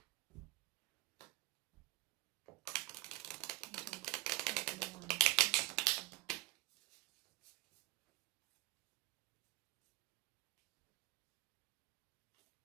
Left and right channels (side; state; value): left; quieter; 22.5 dB